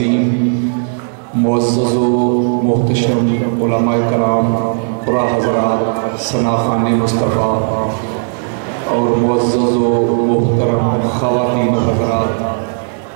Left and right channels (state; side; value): silent; left; digital silence